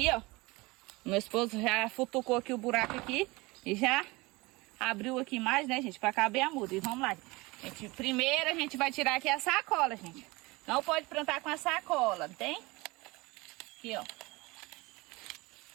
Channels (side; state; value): left; quieter; 23.1 dB